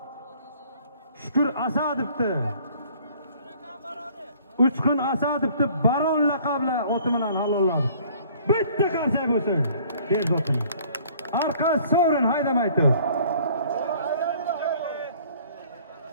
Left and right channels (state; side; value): inverted; both; correlation -0.55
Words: Shukur Asadovni 3 kun Asadovni Baron laqabli oti bilan halolladi. Bitta qarsak bo'lsin. Ber zotini. Arqa sovrin haydamay tur.